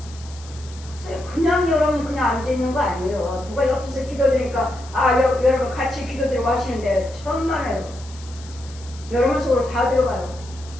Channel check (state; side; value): noise; left; hiss, 20 dB below the sound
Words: 그냥 여러분 그냥 앉아 있는 거 아니에요. 누가 옆에서 기도드리니까 여러분 같이 기도드리고 하시는데 천만에요. 여러분 속으로 다 들어가요.